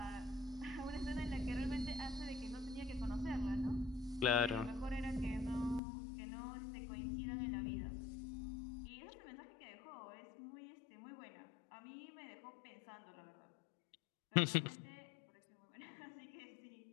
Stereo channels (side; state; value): right; drops out; at 5.8 s